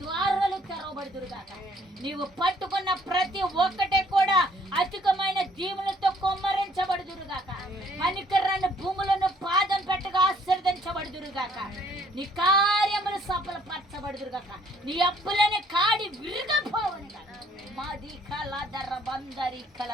ద్వారాలు తెరవబడుదురుగాక. నీవు పట్టుకున్న ప్రతి ఒక్కటే కూడా అధికమైన దీవులతో కొమ్మరించబడుదురుగాక. మణికర్రాన్ని భూములను పాదం పెట్టగా ఆశీర్వదించబడుదురుగాక. నీ కార్యములు సఫలపరచబడుదురుగాక. నీ అప్పులని కాడి విరిగపోవని గాక. మాది కలదర బందరి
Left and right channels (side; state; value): both; normal; correlation 0.62